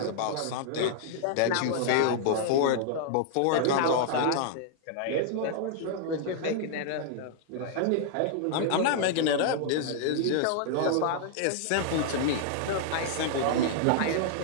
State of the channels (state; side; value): different; both; correlation -0.01